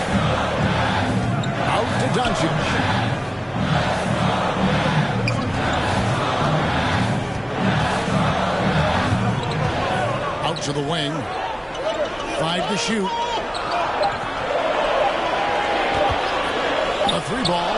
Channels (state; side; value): identical; both; correlation 1.00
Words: Out to Doncic. Out to the wing. 5 to shoot. A 3 ball.